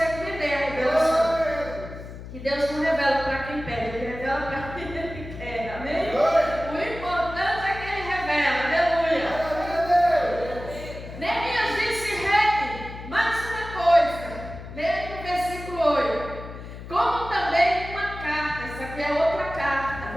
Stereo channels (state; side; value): noise; left; hum, 12 dB below the sound